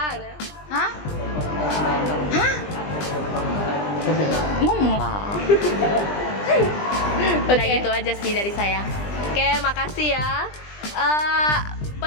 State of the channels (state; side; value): late; right; 20 ms